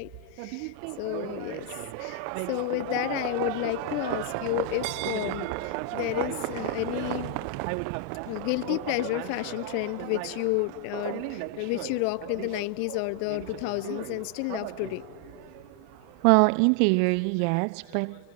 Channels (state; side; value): different; both; correlation 0.00